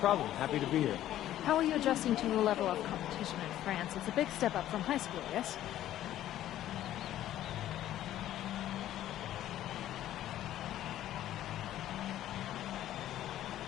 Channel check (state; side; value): quieter; right; 12.8 dB